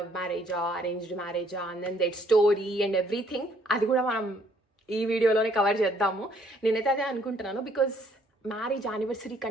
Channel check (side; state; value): both; normal; correlation 0.64